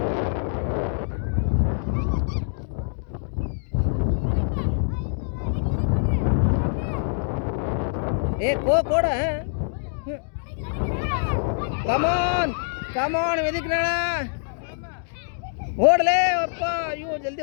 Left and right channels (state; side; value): silent; right; digital silence